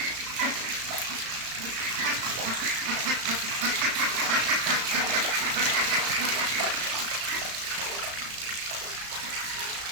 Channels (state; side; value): late; left; 35 ms